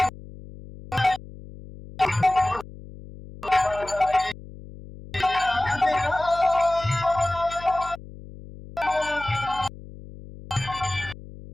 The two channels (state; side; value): noise; left; hum, 16 dB below the sound